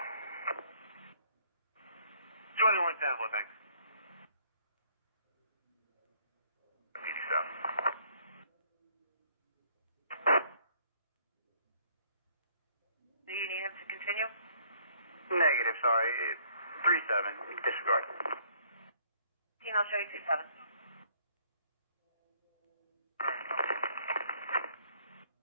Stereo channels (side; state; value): both; inverted; correlation -0.63